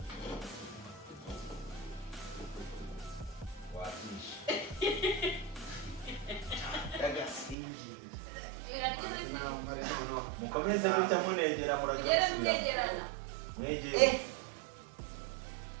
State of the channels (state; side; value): drops out; left; at 7.6 s